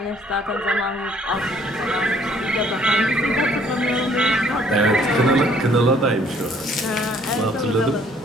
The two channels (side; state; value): both; normal; correlation 0.61